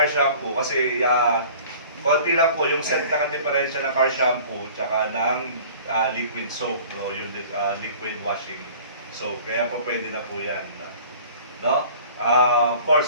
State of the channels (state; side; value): inverted; both; correlation -0.47